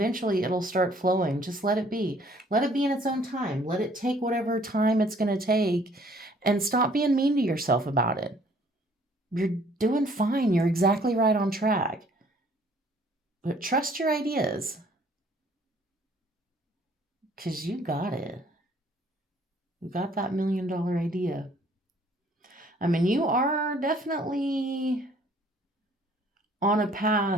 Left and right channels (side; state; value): both; normal; correlation 0.59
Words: it'll start flowing. Just let it be. Let it be in its own time. Let it take whatever time it's going to take, and stop being mean to yourself about it. You're doing fine. You're exactly right on track. But trust your ideas, because you got it. You got that $1 million idea. I mean, you are definitely on a